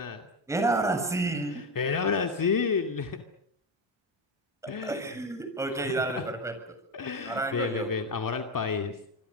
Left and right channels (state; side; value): normal; both; correlation 0.14